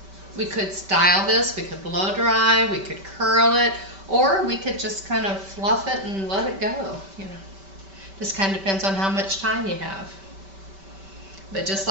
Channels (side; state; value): left; late; 5.2 ms